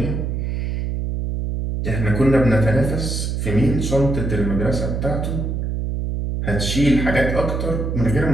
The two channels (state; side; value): noise; right; hum, 2 dB below the sound